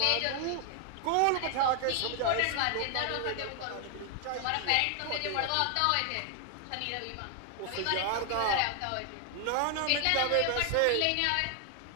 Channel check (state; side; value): different; both; correlation 0.00